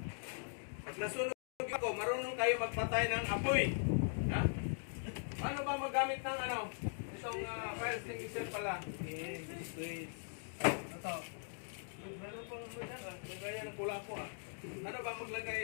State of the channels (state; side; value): silent; right; digital silence